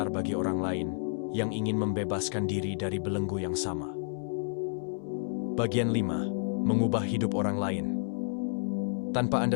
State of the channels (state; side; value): silent; right; 58 dB below the other